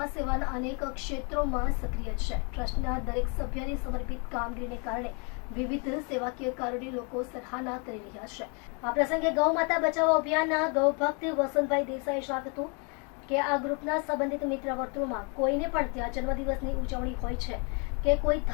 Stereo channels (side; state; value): right; quieter; 35.4 dB